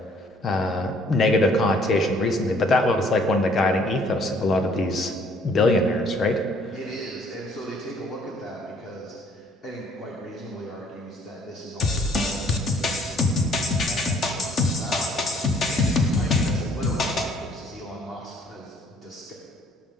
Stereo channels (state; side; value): normal; both; correlation 0.61